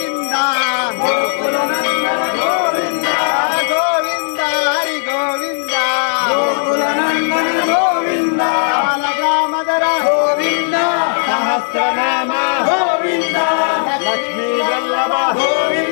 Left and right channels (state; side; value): silent; right; 63 dB below the other